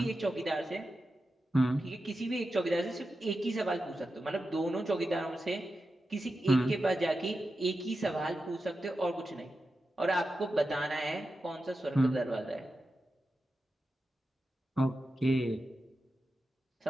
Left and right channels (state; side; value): normal; both; correlation 0.91